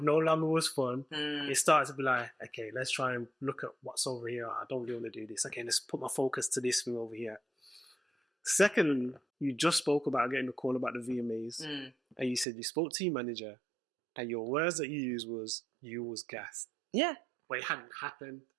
longer was fun, it started to be like, okay, let's try and look at what's over here. I don't really want to do this. Okay, let's put my focus to this thing over here. Second, you just spoke about getting a call about the VMAs, and you said you spoke to your manager, and your words that you used was, you was gassed. Yeah. But it hadn't happened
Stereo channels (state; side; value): drops out; left; at 12.5 s